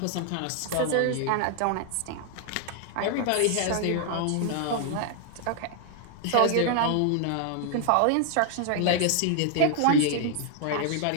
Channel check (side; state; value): both; different; correlation 0.00